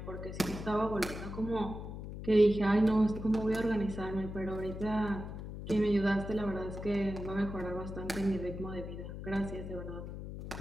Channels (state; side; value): noise; left; hum, 8 dB below the sound